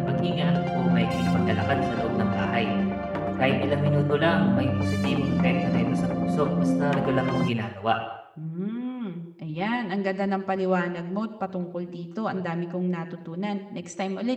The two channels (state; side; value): identical; both; correlation 1.00